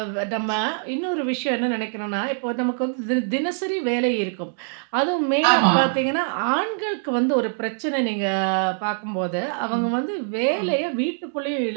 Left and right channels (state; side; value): silent; left; 63 dB below the other